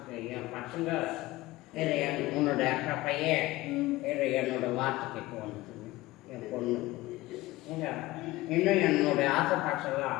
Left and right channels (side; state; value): right; quieter; 18.5 dB